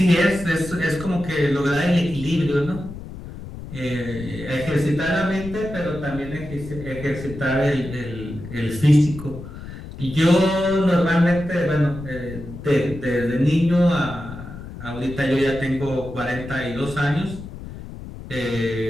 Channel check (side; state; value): left; noise; rumble, 12 dB below the sound